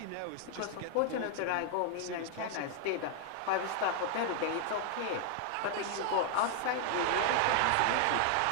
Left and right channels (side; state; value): both; different; correlation 0.00